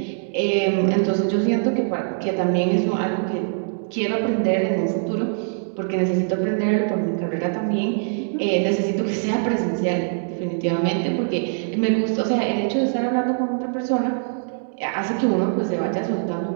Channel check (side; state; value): left; silent; digital silence